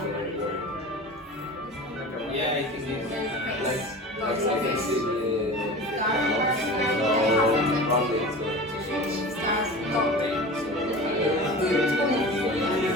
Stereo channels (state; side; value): normal; both; correlation 0.35